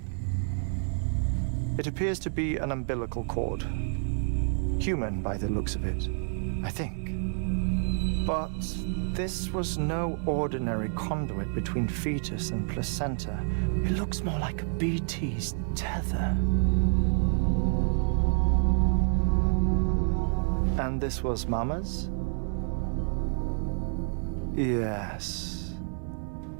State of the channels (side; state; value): left; silent; 59 dB below the other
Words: It appears to be an umbilical cord. Human by the looks of it, I think. But this was no ordinary conduit between fetus and placenta. It looks more like a BT's tether. And this was Mama's? Yes.